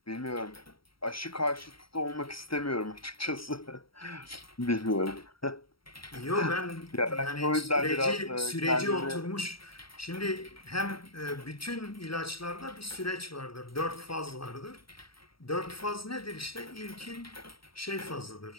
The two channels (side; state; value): right; late; 0.75 ms